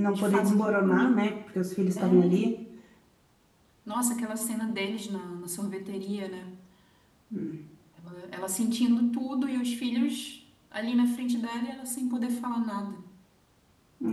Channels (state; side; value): identical; both; correlation 1.00